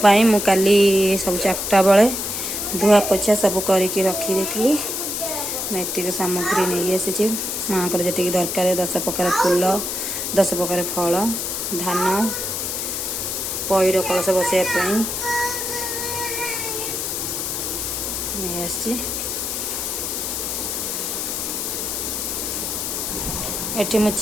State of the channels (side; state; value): left; noise; hiss, 2 dB below the sound